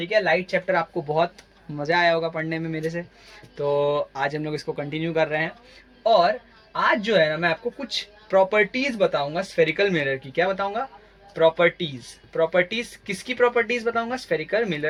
है, लाइट चैप्टर आपको बहुत मज़ा आया होगा पढ़ने में मेरे से। तो आज हम लोग इसको कंटिन्यू कर रहे हैं। और आज जो है ना, मैं आपको कुछ प्रॉपर्टीज़ बताऊंगा स्फेरिकल मिरर की। क्या बताऊंगा? प्रॉपर्टीज़। प्रॉपर्टीज़ किसकी प्रॉपर्टीज़ बताऊंगा? स्फेरिकल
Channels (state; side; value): identical; both; correlation 1.00